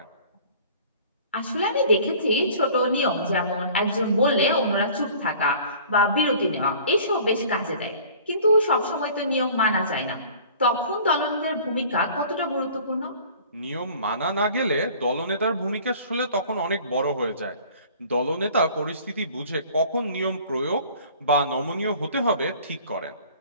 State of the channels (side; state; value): both; inverted; correlation -0.48